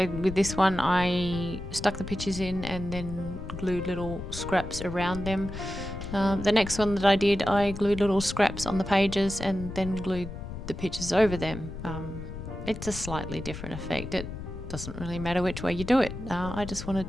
with this one I stuck the pictures in and then glued little scraps around them. The next one that I did, I glued little scraps on the pages and then glued the pictures over them. It's a slightly different effect. It doesn't really matter which way you do it. I just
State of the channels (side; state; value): left; noise; rumble, 9 dB below the sound